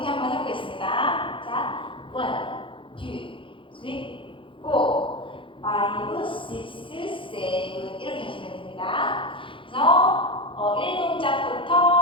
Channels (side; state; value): right; late; 0.25 ms